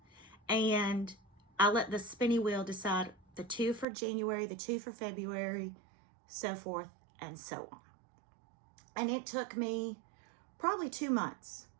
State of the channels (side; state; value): left; drops out; at 3.9 s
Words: and I let the spinny wheel decide the 2 for January, the 2 for February, so forth and so on. And it took me probably 2 months